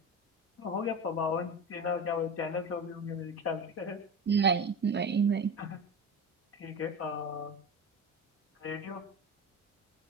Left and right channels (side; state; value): both; normal; correlation 0.26